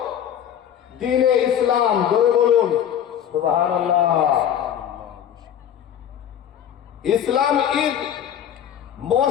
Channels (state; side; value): quieter; right; 9.7 dB